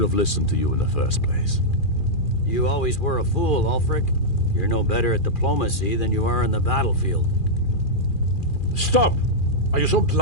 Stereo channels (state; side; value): late; right; 2.4 ms